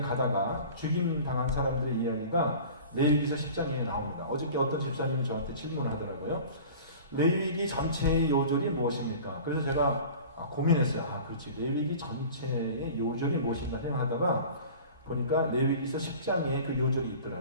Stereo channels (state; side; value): inverted; both; correlation -0.41